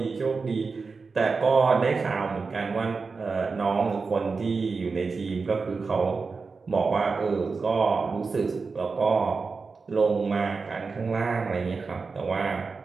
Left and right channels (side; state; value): left; quieter; 4.5 dB